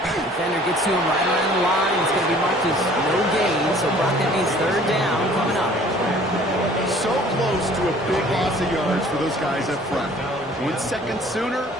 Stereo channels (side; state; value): both; normal; correlation 0.53